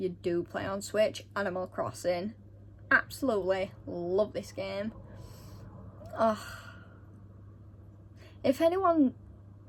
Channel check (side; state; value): both; identical; correlation 1.00